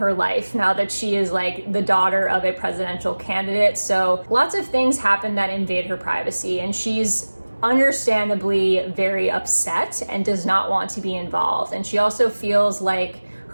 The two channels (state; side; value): inverted; both; correlation -1.00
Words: life now that she is like the daughter of a presidential candidate. So lots of things happen that invade her privacy, and she's understandably very upset and does not want to be involved. And she also feels like